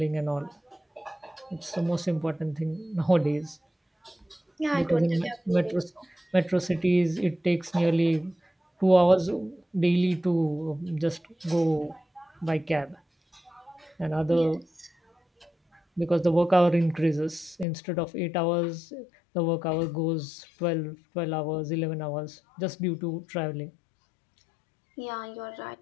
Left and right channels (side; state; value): right; drops out; at 17.7 s